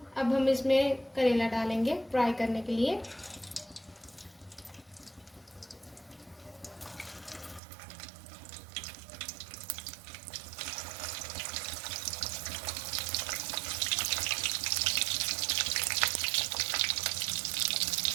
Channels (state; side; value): drops out; left; at 7.6 s